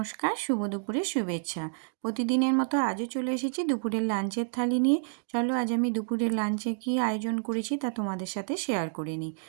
শুভ দুপুরের শুভেচ্ছা। প্রতিদিনের মতো আজও চলে এসেছি দুপুরের লাঞ্চের থালি নিয়ে। চলো আজ আমি দুপুরের লাঞ্চে কী আয়োজন করেছি তা তোমাদের সাথে শেয়ার করে নিই।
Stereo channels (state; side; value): silent; left; digital silence